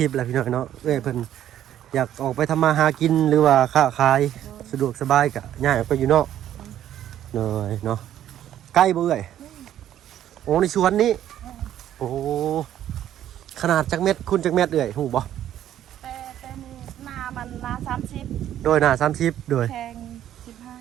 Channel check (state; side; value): quieter; left; 11.4 dB